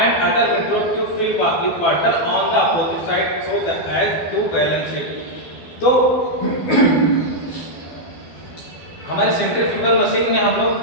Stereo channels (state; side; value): late; right; 12 ms